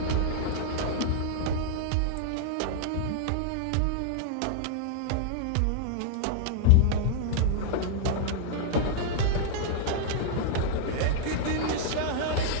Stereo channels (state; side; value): different; both; correlation -0.01